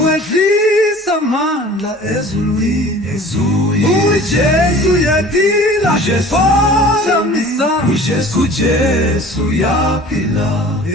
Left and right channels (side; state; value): both; normal; correlation 0.45